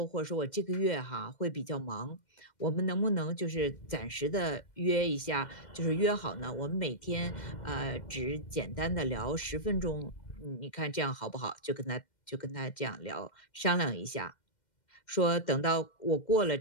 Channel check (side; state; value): right; late; 2.1 ms